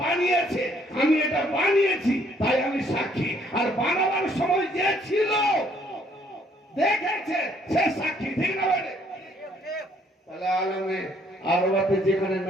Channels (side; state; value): both; normal; correlation 0.65